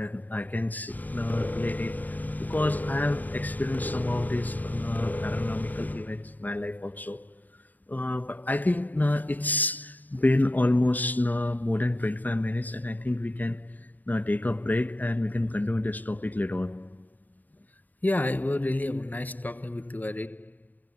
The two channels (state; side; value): late; right; 0.084 ms